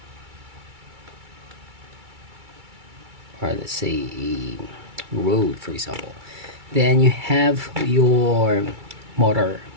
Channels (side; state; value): left; late; 2.3 ms